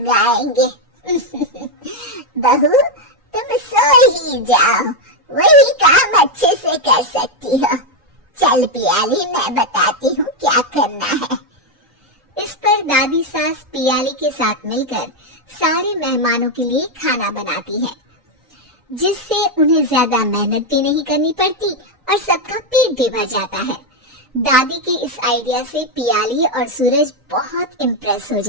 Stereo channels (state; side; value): normal; both; correlation 0.04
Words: बहू, तुम सो ही जाओ, वही काम अच्छे से कर सकती हो। चल पियाली, मैं बताती हूँ क्या करना है। इस पर दादी सास पियाली के साथ मिलकर सारे मेहमानों के लिए खाना बनाती है, जिससे उन्हें ज्यादा मेहनत भी नहीं करनी पड़ती और सबका पेट भी भर जाता है। दादी के इस आइडिया से पियाली और सूरज बहुत इम्प्रेस हो